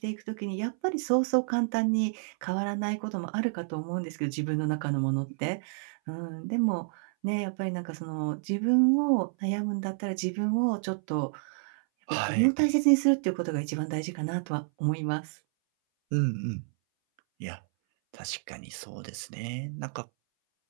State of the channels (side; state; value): left; silent; 58 dB below the other